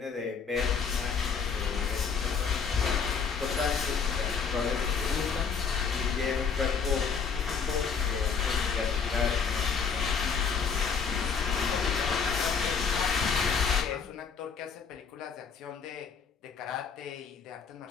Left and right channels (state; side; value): quieter; right; 6.1 dB